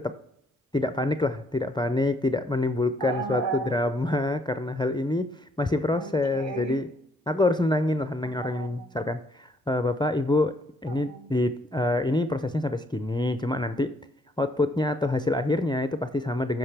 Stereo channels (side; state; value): both; normal; correlation 0.68